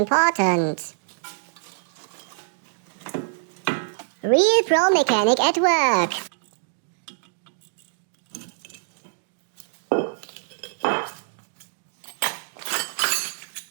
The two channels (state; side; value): silent; left; digital silence